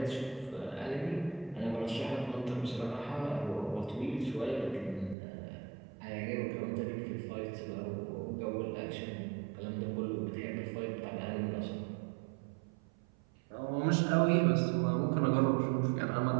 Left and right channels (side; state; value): left; drops out; at 5.2 s